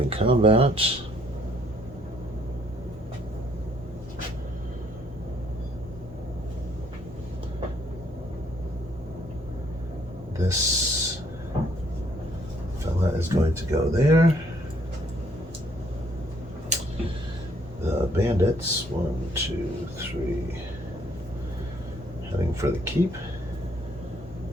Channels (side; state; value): both; normal; correlation 0.66